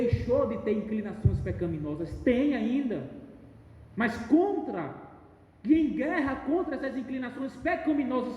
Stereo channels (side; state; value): both; identical; correlation 1.00